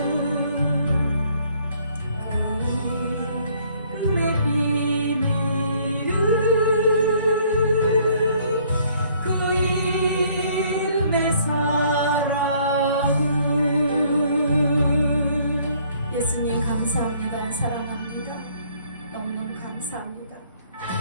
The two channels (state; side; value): inverted; both; correlation -0.62